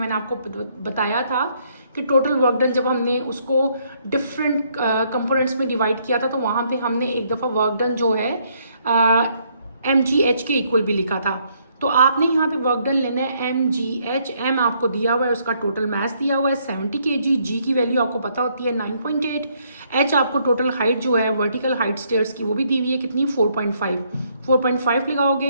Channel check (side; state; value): both; inverted; correlation -0.70